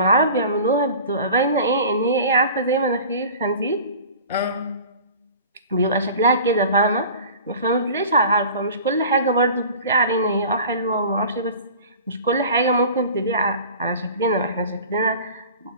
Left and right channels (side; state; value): both; inverted; correlation -0.41